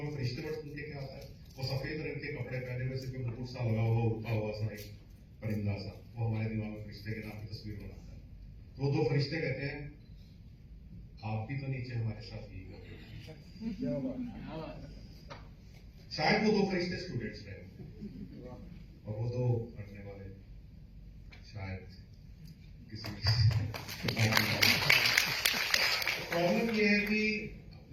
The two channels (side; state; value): both; identical; correlation 1.00